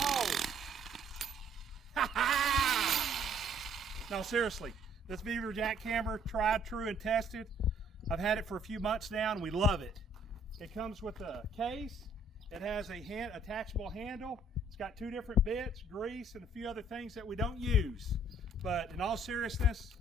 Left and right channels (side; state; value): both; normal; correlation 0.62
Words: hole. Ha ha! No, seriously, this Vevor jackhammer, tried, true, and tested. I've had it for a few months now, and we love it. It comes with a case. It has a attachable handle. It's got 2 different bits, grease, and a few other things that we don't use. But in all seriousness,